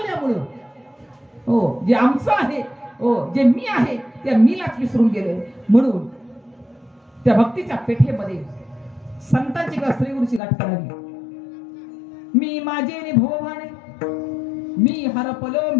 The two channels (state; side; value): drops out; right; at 10.4 s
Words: हो जे आमचं आहे, हो जे मी आहे त्या मीलाच विसरून गेले. म्हणून त्या भक्तीच्या पेठेमध्ये संतांची किंवा श्रीगुरूची गाठ करावी. मी माझे नि भवभाणे, मी हरपलो